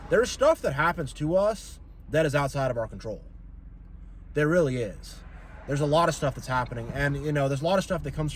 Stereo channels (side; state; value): both; identical; correlation 1.00